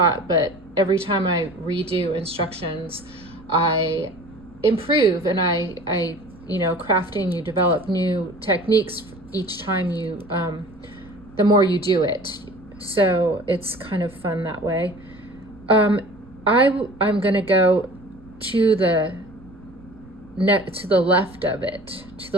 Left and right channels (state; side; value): noise; right; rumble, 22 dB below the sound